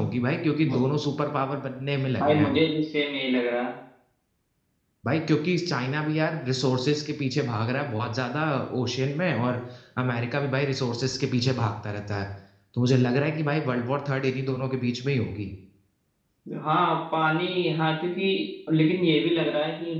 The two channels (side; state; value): both; identical; correlation 1.00